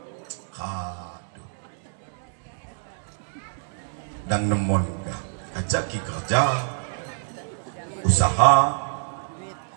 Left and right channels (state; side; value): silent; left; digital silence